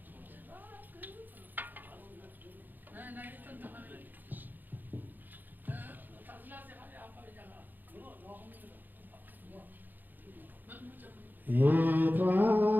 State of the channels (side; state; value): left; late; 0.087 ms